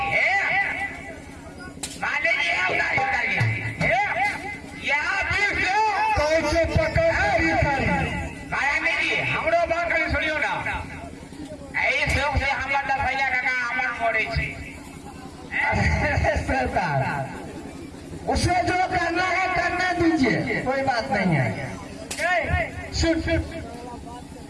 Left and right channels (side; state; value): both; identical; correlation 1.00